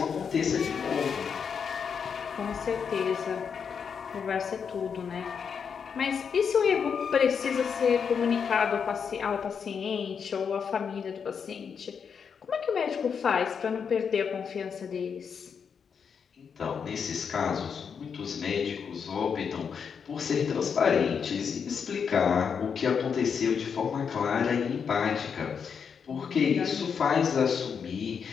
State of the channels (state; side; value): quieter; right; 6.6 dB